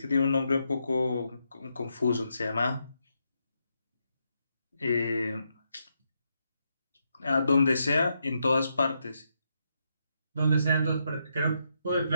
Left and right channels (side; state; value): both; inverted; correlation -0.81